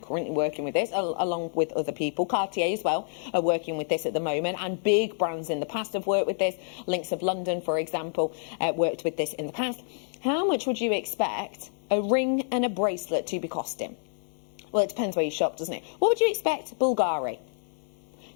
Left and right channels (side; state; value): right; silent; digital silence